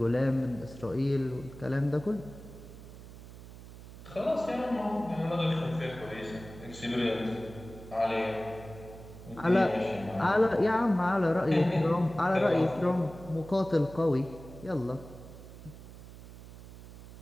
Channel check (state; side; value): noise; right; hum, 16 dB below the sound